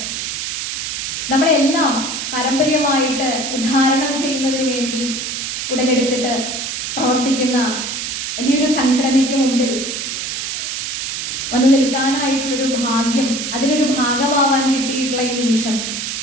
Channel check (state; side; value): noise; right; hiss, 4 dB below the sound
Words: നമ്മളെല്ലാം പാരമ്പര്യമായിട്ട് ഉദ്ധാരണം ചെയ്യുന്നതിന് വേണ്ടി ഉടലെടുത്തിട്ട് പ്രവർത്തിക്കുന്ന വലിയൊരു സംഘടനയ്ക്ക് മുമ്പിൽ വന്നു നിൽക്കാനായിട്ടുള്ളൊരു ഭാഗ്യം, അതിലൊരു ഭാഗമാവാൻ കിട്ടിയിട്ടുള്ള ഈ നിമിഷം